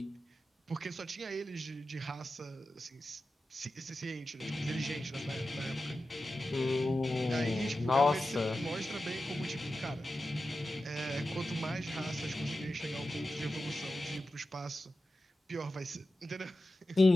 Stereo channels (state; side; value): normal; both; correlation 0.92